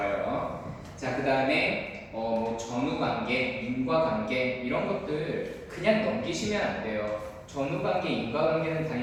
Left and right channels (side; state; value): both; identical; correlation 1.00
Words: 자, 그 다음에 뭐 전후관계, 인과관계 이런 것들 그냥 넘기시면 안 돼요. 전후관계, 인과관계는